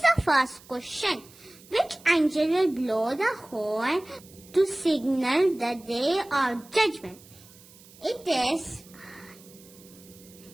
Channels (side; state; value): right; noise; hiss, 23 dB below the sound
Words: the first question. Which angel will blow the horn to signal the day of judgment? It is